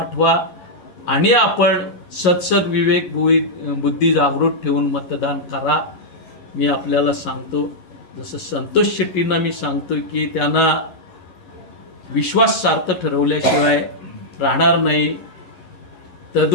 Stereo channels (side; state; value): right; late; 11 ms